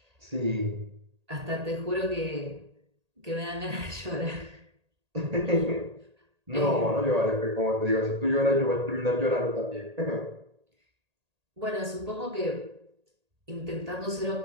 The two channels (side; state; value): left; late; 1.8 ms